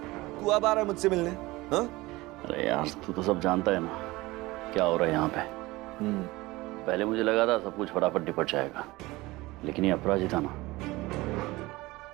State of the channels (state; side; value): quieter; left; 20.4 dB